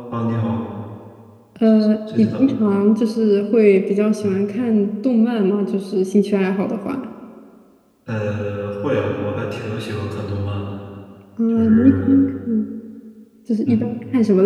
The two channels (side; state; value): both; identical; correlation 1.00